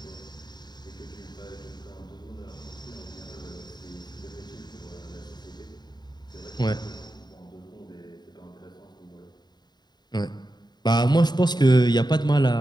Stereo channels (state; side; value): late; right; 0.20 ms